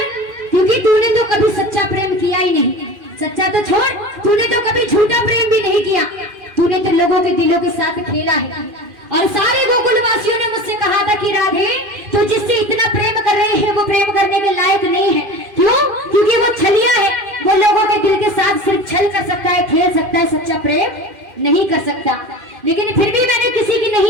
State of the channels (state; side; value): late; left; 2.4 ms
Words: क्योंकि तूने तो कभी सच्चा प्रेम किया ही नहीं। सच्चा तो छोड़, तूने तो कभी झूठा प्रेम भी नहीं किया। तूने तो लोगों के दिलों के साथ खेला है और सारे गोकुलवासियों ने मुझसे कहा था कि राधे, तू जिससे इतना प्रेम कर रहे हैं वो प्रेम करने के लायक नहीं है। क्यों? क्योंकि वो छलिया है, वो लोगों के दिल के साथ सिर्फ छल कर सकता है, खेल सकता है, सच्चा प्रेम नहीं कर सकता। लेकिन फिर भी मैंने किसी की